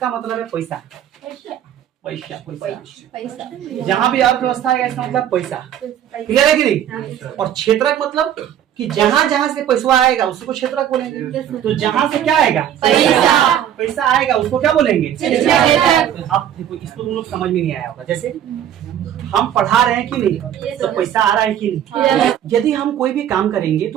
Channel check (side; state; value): left; quieter; 10.5 dB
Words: मतलब है पैसा। पैसा जहां भी अर्थव्यवस्था आएगा इसका मतलब पैसा। क्लियर है कि नहीं? और क्षेत्रक मतलब कि जहां जहां से पैसा आएगा उसको क्षेत्रक बोलेंगे। तो जहां से क्या आएगा? पैसा आएगा उसको क्या बोलेंगे? अब देखो, इसको तुम लोग समझ में नहीं आया होगा। जैसे हम पढ़ा रहे हैं कि नहीं, तो पैसा आ रहा है कि नहीं? यदि हम कोई भी काम करेंगे तो